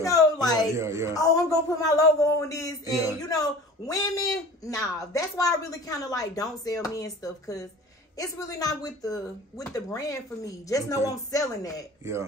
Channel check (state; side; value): normal; both; correlation 0.41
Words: know, like, Yeah. oh, I'm going to put my logo on this. And, Yeah. you know, women, nah. That's why I really kind of like don't sell men stuff, because it's really not with the brand for me. Just know I'm selling that. Yeah.